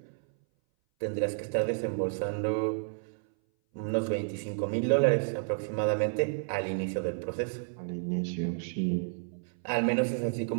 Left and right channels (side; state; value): left; silent; 57 dB below the other